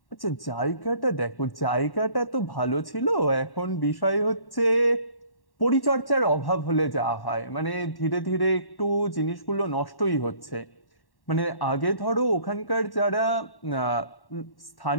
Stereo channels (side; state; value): right; late; 1.1 ms